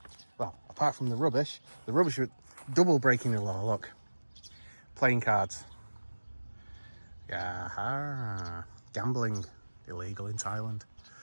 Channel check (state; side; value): inverted; both; correlation -1.00